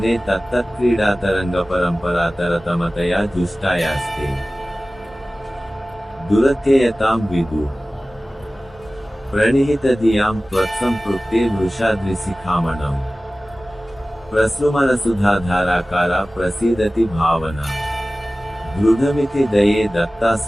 तत्तत्क्रीडातरङ्गपरम्परातरतमतया जुष्टायास्ते दुरत्ययतां विदुः प्रणिहितधियां त्वत्सम्पृक्तेर्वृषाद्रिशिखामणौ प्रसृमरसुधाधाराकारा प्रसीदति भावना दृढमिति दये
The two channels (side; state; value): both; normal; correlation 0.97